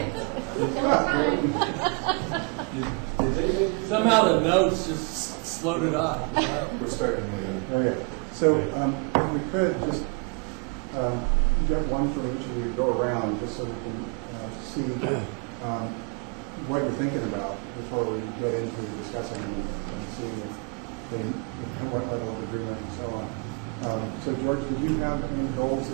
Did they make you- Somehow the notes just slowed it on. We're starting again. Okay, so we could just get one from each of you, go around, just so we can see what you're thinking about before we get into discussing and seeing what level of agreement and so on. So George, did you have any goals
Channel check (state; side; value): quieter; left; 35.1 dB